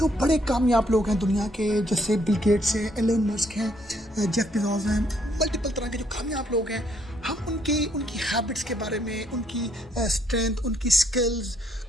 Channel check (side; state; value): both; normal; correlation 0.69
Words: बड़े कामयाब लोग हैं दुनिया के, जैसे बिल गेट्स हैं, एलन मस्क हैं, जेफ बेजोस हैं, मल्टीपल तरह के जो कामयाब लोग हैं, हम उनकी हैबिट्स के बारे में, उनकी स्ट्रेंथ, उनकी स्किल्स